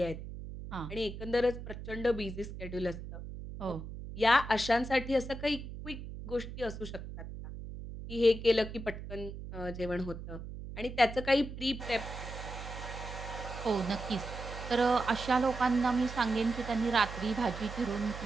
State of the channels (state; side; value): noise; right; hum, 10 dB below the sound